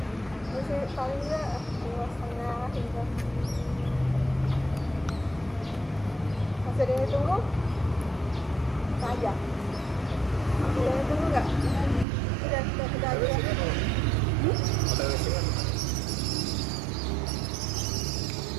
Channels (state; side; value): drops out; left; at 12.1 s